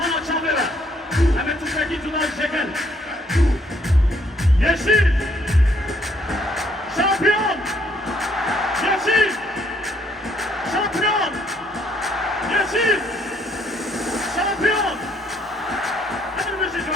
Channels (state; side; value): normal; both; correlation 0.67